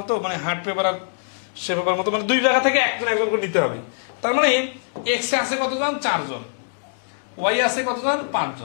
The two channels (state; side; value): silent; right; digital silence